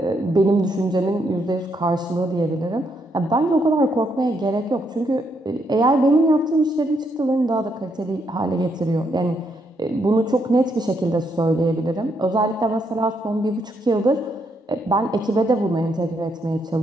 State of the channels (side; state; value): both; normal; correlation 0.76